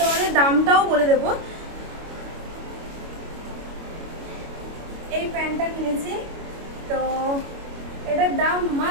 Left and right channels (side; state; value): left; late; 25 ms